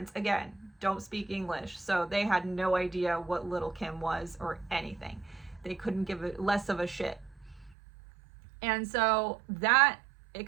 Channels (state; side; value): drops out; left; at 7.8 s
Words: again, don't speak English, so they had no idea what Little Kim was or anything. They couldn't give it less of a shit. And so that